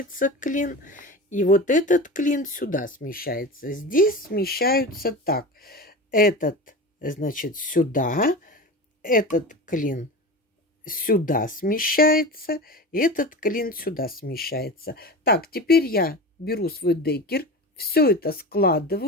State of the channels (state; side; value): normal; both; correlation 0.29